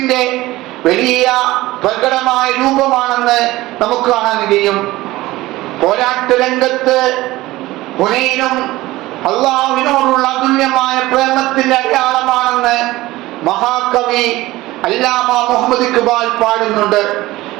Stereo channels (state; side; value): quieter; left; 18.1 dB